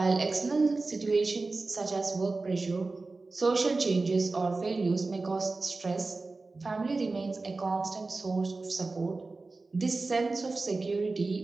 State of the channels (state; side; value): quieter; left; 3.6 dB